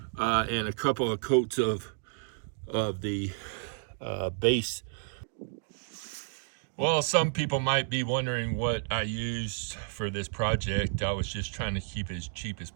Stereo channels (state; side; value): silent; left; digital silence